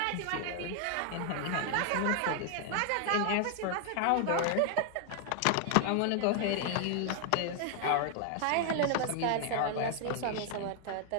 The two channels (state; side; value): different; both; correlation 0.00